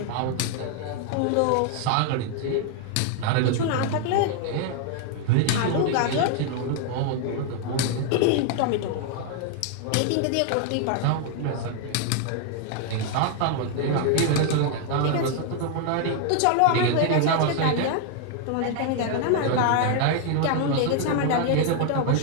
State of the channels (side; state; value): both; different; correlation 0.00